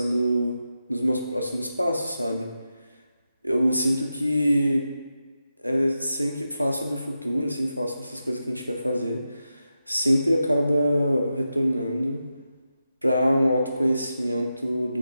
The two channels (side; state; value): both; inverted; correlation -0.89